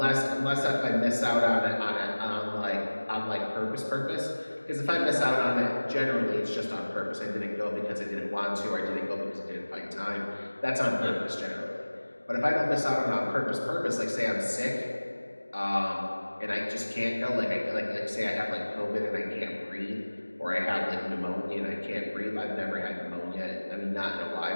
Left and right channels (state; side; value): inverted; both; correlation -1.00